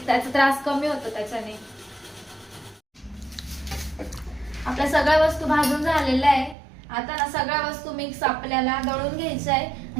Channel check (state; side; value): drops out; left; at 6.6 s